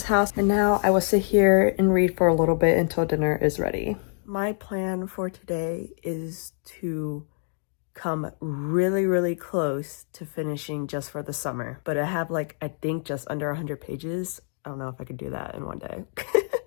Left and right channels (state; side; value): silent; right; 61 dB below the other